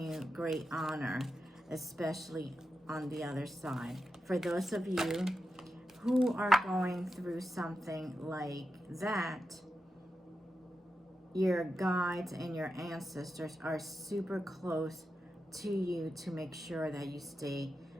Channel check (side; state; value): both; normal; correlation 0.89